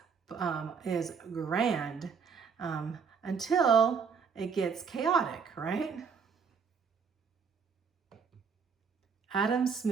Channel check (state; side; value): quieter; left; 6.0 dB